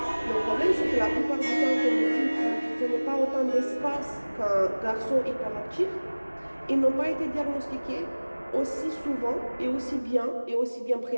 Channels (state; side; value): inverted; both; correlation -1.00